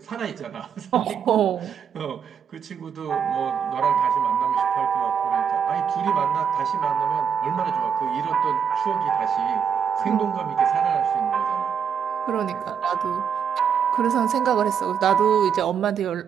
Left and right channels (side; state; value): left; quieter; 7.4 dB